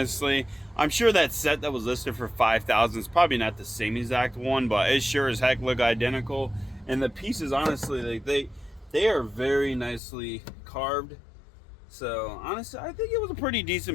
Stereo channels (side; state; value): right; drops out; at 10.0 s